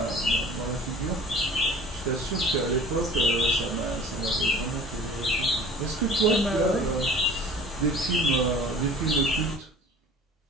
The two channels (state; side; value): normal; both; correlation 0.44